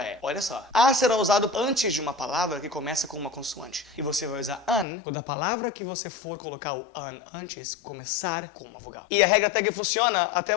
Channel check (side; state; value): right; drops out; at 4.9 s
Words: é. Olha só, a será usado antes de uma palavra que começa com uma consoante. E você vai usar an quando a palavra que você for colocar o an antes começar com uma vogal. E a regra até que funciona até